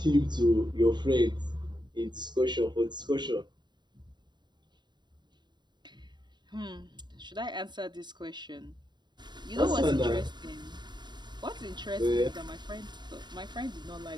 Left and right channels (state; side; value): late; left; 0.21 ms